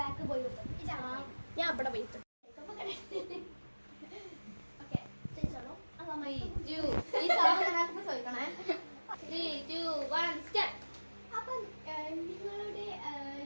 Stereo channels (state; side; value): inverted; both; correlation -1.00